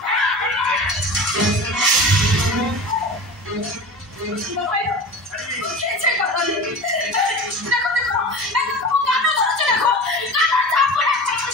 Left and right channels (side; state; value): both; normal; correlation 0.33